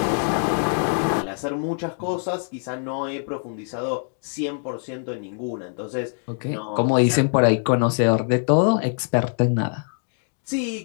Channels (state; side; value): silent; right; 63 dB below the other